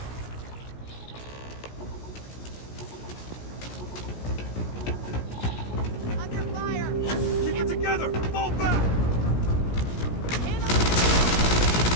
Under fire! Keep it together! Fall back!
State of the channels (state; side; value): late; right; 17 ms